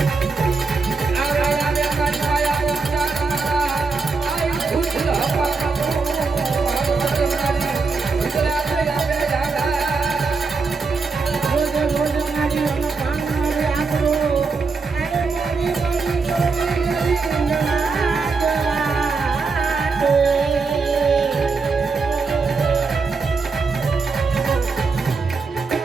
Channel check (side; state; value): left; quieter; 4.4 dB